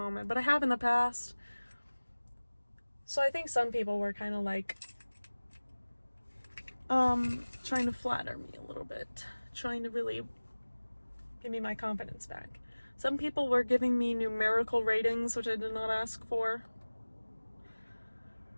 but I have in the past. So I think some people were kind of like trying to flatter me a little bit, trying to really give me my confidence back. Some people were giving me numerical ratings, which I did not ask for.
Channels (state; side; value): inverted; both; correlation -1.00